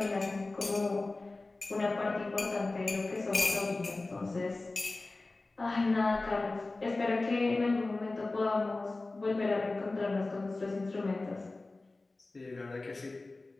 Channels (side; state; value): right; quieter; 3.2 dB